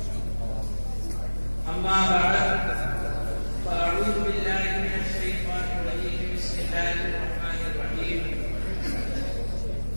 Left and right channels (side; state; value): both; inverted; correlation -1.00